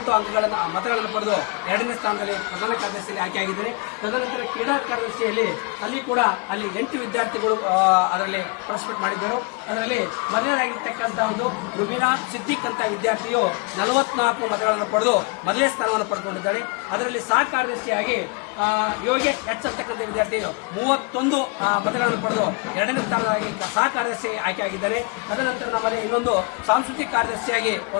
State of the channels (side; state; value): right; quieter; 29.6 dB